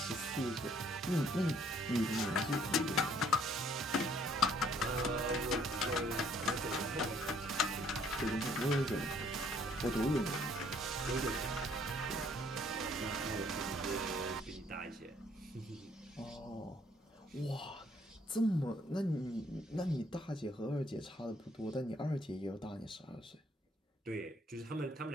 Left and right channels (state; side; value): normal; both; correlation 0.64